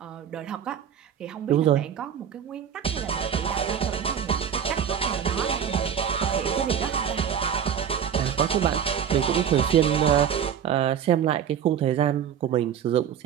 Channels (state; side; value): quieter; left; 8.5 dB